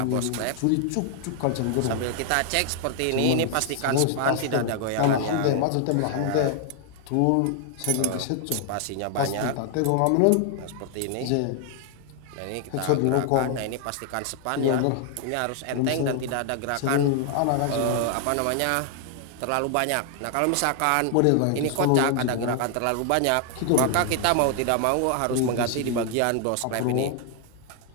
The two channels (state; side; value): different; both; correlation 0.00